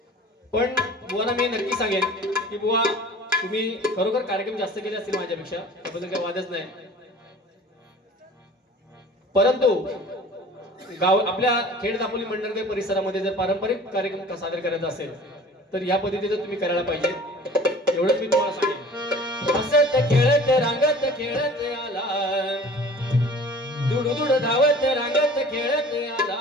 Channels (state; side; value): normal; both; correlation 0.45